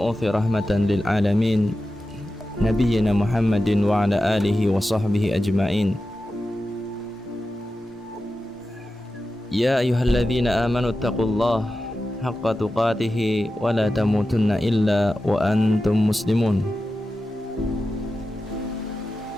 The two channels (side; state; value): both; normal; correlation 0.92